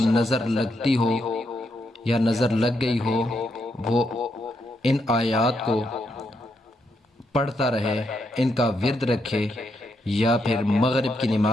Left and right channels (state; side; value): normal; both; correlation 0.80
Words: نظر لگتی ہو یا نظر لگ گئی ہو، وہ ان آیات کو پڑھتا رہے، ان کا ورد رکھے، یا پھر مغرب کی